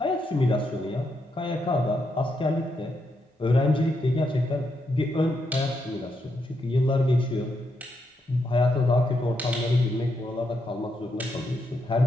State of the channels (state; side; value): normal; both; correlation 0.81